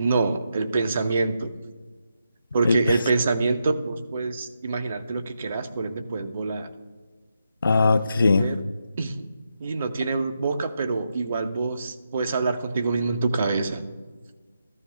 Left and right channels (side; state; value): both; inverted; correlation -0.83